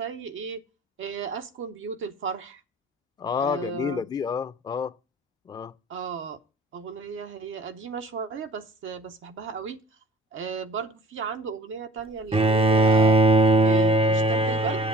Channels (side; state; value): both; normal; correlation 0.49